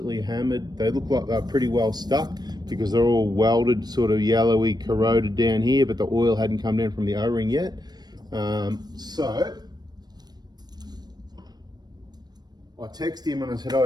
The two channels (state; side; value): late; left; 0.19 ms